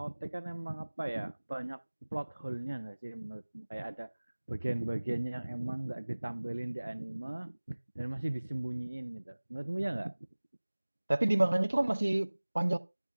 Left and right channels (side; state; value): both; inverted; correlation -1.00